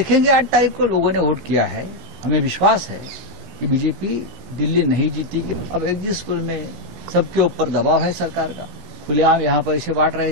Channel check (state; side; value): late; left; 17 ms